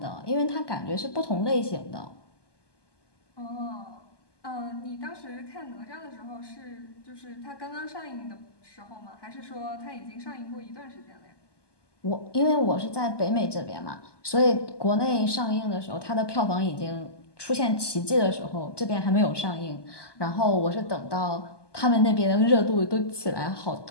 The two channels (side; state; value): right; late; 1.2 ms